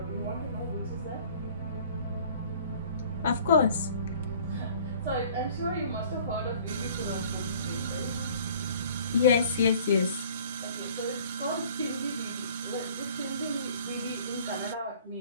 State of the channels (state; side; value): inverted; both; correlation -0.51